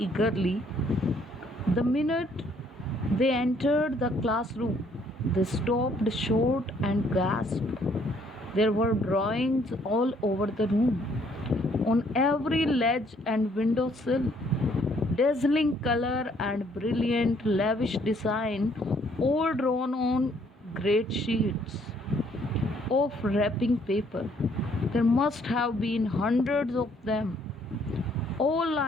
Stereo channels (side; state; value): both; normal; correlation 0.65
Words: The minute they entered the classroom, they stopped short and gasped. There were drawings all over the room, on every ledge and window sill. Dazzling color and brilliant, lavish design, all drawn on great sheets of wrapping paper. There must have been hundreds of them, all